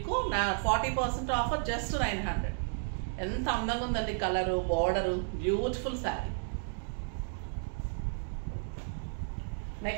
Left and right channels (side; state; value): left; silent; digital silence